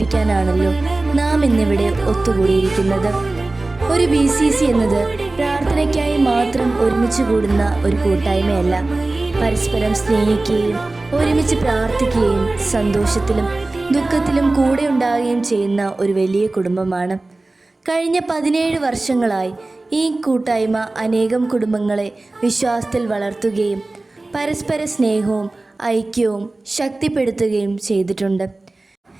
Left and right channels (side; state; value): left; quieter; 3.0 dB